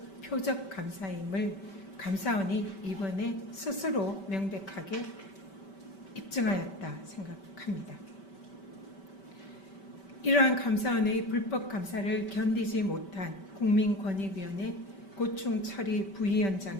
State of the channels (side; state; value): right; late; 5.2 ms